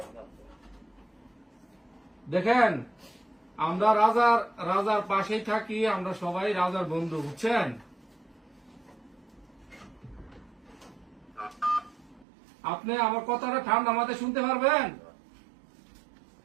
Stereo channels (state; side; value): drops out; left; at 12.2 s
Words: দেখেন, আমরা রাজার রাজার পাশেই থাকি, আমরা সবাই রাজার বন্ধু, বুঝছেন? আপনি আমার কথাটা ঠান্ডা মাথায় শুনতে পারবেন?